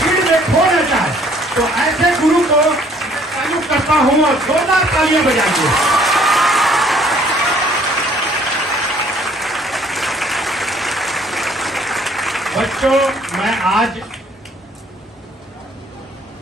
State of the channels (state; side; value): normal; both; correlation 0.59